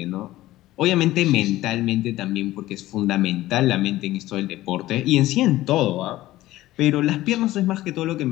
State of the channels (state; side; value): quieter; right; 16.1 dB